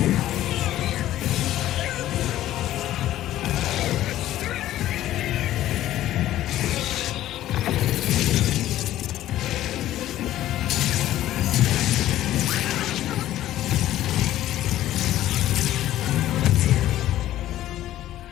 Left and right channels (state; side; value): quieter; right; 13.6 dB